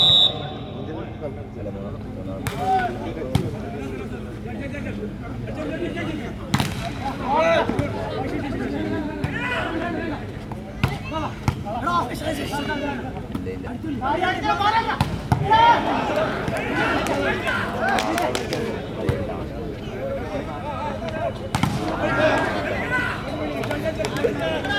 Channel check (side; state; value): both; identical; correlation 1.00